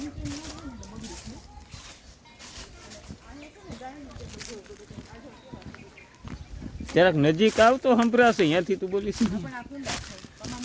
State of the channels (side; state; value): both; identical; correlation 1.00